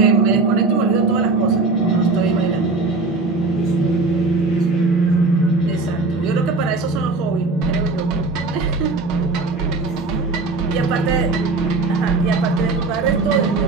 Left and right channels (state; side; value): quieter; left; 3.7 dB